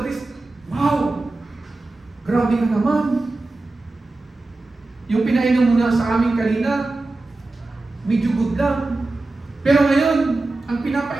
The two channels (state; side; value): quieter; left; 3.1 dB